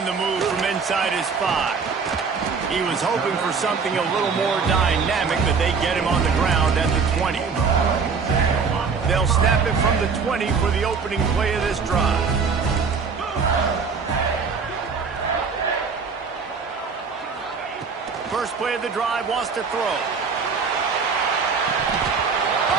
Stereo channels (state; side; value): quieter; left; 5.4 dB